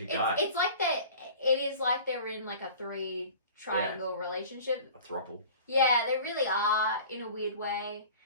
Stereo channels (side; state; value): both; inverted; correlation -0.42